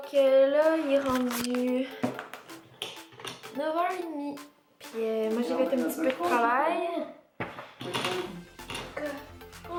là, il est rendu 9h30. Puis moi, j'ai fait un petit peu de travail.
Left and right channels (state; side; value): identical; both; correlation 1.00